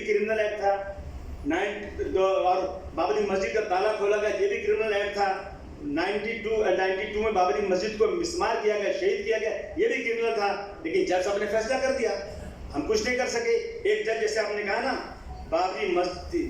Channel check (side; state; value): both; identical; correlation 1.00